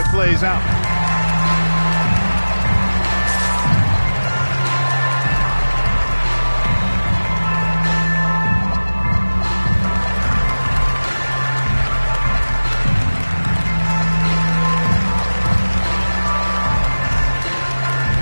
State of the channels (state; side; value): inverted; both; correlation -1.00